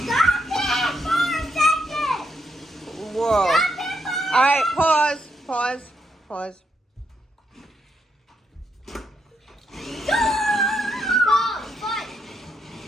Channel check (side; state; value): both; normal; correlation 0.79